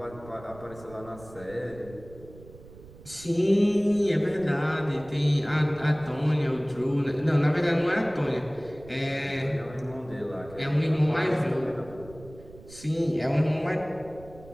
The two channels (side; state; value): right; noise; rumble, 19 dB below the sound